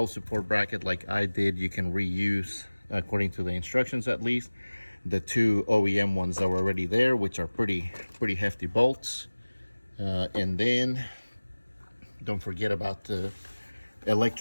support bracket like I did, you can reuse, according to the instructions at least, the 2 OEM ones that were already there, which are pretty hefty bolts. And then don't forget about the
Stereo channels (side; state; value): both; inverted; correlation -1.00